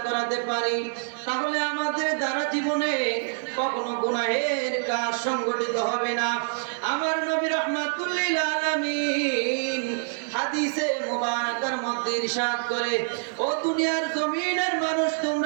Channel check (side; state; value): left; silent; 61 dB below the other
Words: করাতে পারি, তাহলে আমাদের দ্বারা জীবনে কখনো গুনাহের কাজ সংগঠিত হবে না। আমার নবী রাহমাতুল লিল আলামিন হাদিসে মুবারাকার মধ্যে ইরশাদ করে, ও দুনিয়ার জমিনের মানুষ